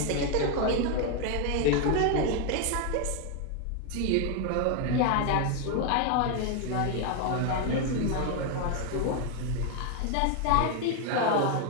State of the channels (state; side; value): different; both; correlation 0.01